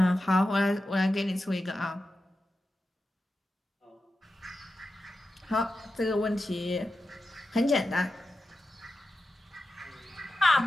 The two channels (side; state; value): both; normal; correlation 0.91